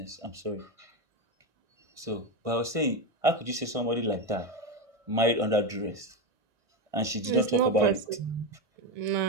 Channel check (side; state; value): left; late; 1.6 ms